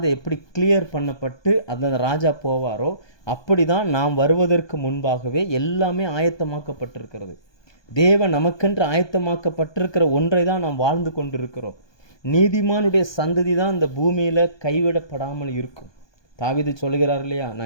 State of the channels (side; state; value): right; late; 1.2 ms